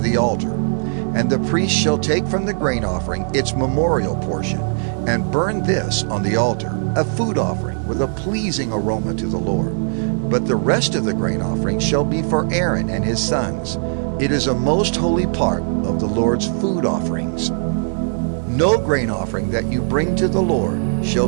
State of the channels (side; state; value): left; silent; digital silence